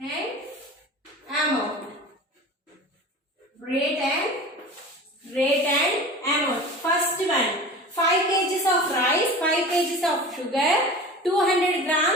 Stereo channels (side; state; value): both; normal; correlation 0.36